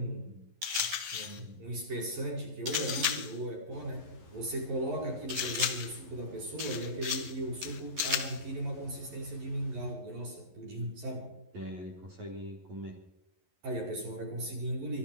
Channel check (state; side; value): late; left; 11 ms